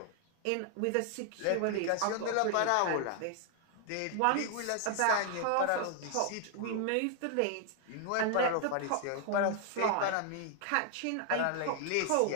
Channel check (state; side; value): different; both; correlation 0.00